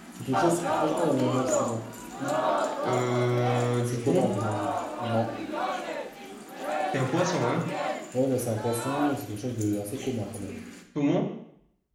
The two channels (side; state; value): both; identical; correlation 1.00